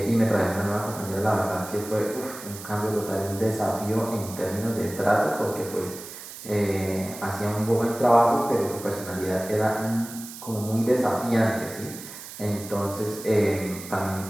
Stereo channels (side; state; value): right; noise; hiss, 13 dB below the sound